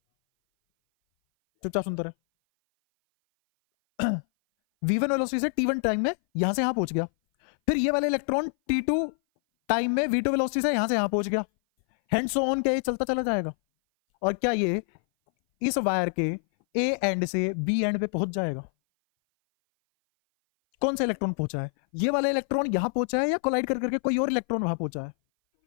चुपचाप सुनते रहे। v1 वेलोसिटी से t1 टाइम में यहां से यहां पहुंच गया, फिर ये वाला इलेक्ट्रॉन t2 टाइम में v2 वेलोसिटी से यहां से यहां पहुंच गया, हैंड सो ऑन के चलता चला जाएगा। और क्या ये इस वायर के ए एंड से बी एंड पे पहुंच जाएगा? कौन सा इलेक्ट्रॉन पहुंचा है? ये वाला इलेक्ट्रॉन यहां पहुंचा है, या कोलाइड कर करके कोई और इलेक्ट्रॉन वहां पहुंचा है?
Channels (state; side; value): silent; right; 58 dB below the other